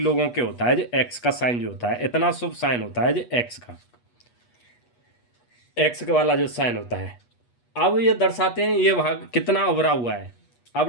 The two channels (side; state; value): right; late; 8.3 ms